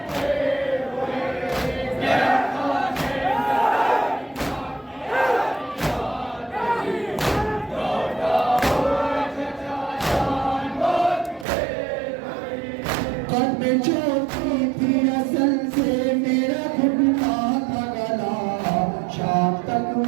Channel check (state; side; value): drops out; left; at 11.5 s